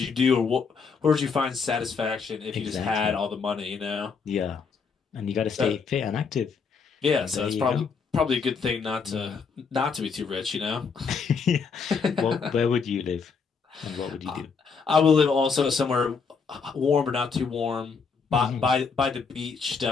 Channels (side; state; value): right; quieter; 5.4 dB